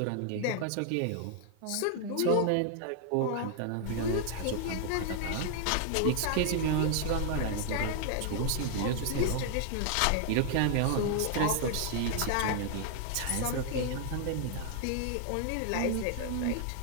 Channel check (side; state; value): both; different; correlation 0.00